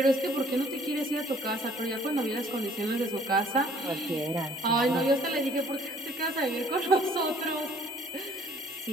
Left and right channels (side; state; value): both; normal; correlation 0.57